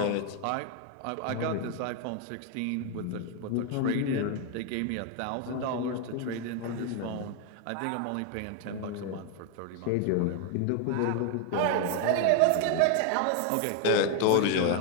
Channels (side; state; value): both; different; correlation 0.01